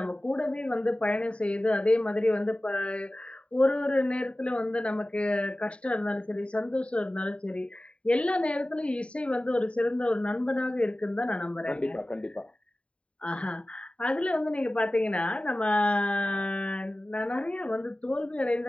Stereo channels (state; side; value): late; right; 0.061 ms